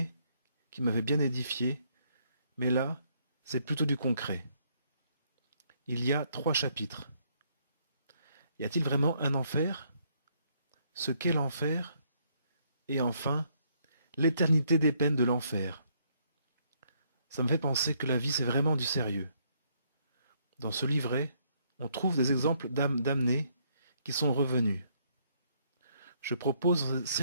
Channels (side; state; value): both; inverted; correlation -0.70